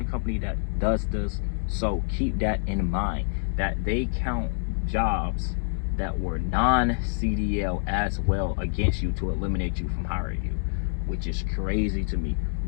company that does this. So keep that in mind, that they count jobs that were non-CDL as well against you to eliminate you from hiring you, which is crazy to me.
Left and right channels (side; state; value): right; silent; digital silence